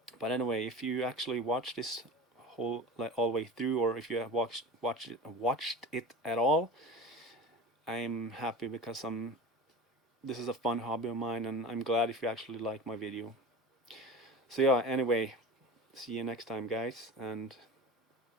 But anyway, if you actually watch this whole like all the way through, or if you have watched it at all, I'm happy because this is a fun hobby of mine, and I'm glad if you actually like my video. So yeah, anyway, see you next time, guys, and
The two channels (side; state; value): both; normal; correlation 0.32